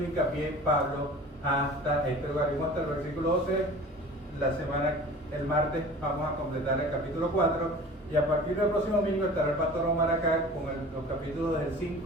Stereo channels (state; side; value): normal; both; correlation 0.41